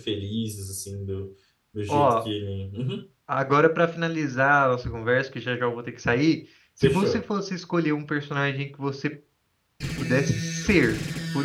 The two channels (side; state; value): both; identical; correlation 1.00